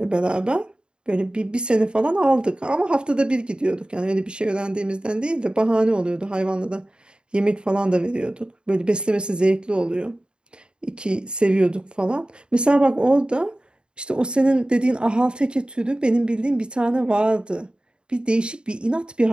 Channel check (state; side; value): late; left; 0.051 ms